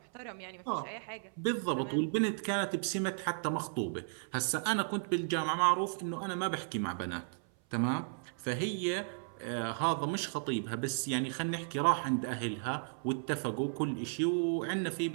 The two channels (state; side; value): silent; left; 55 dB below the other